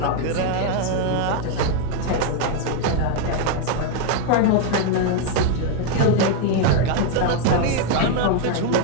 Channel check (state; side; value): different; both; correlation 0.01